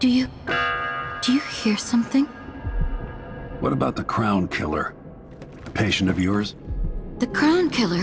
you hear something? What about the Crown Killer? A patient of yours? The Crown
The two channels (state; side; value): identical; both; correlation 1.00